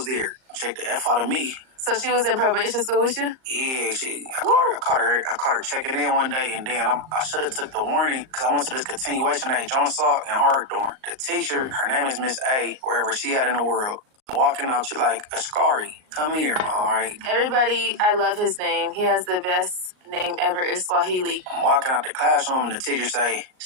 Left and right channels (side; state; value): left; late; 38 ms